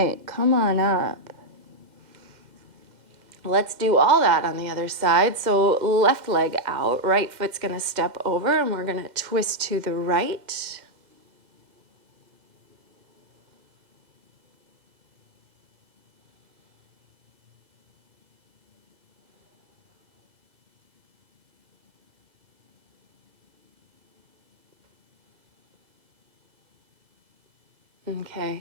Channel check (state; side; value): late; left; 2.0 ms